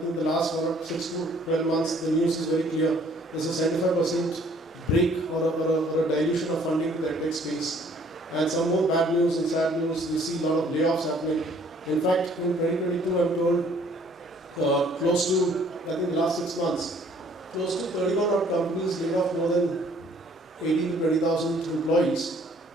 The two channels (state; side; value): normal; both; correlation 0.59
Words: think the last 6 to 12 months, the news is very clear. There's a 75% break or a dilution of funding to the EdTech space. And some more bad news and sad news. We see a lot of layoffs happening. In fact, in 2022, I'm told close to, I think the last 6 months, close to 31 odd companies laid off more than 18 to 20,000 employees.